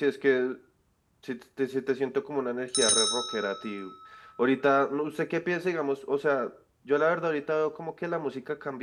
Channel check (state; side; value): identical; both; correlation 1.00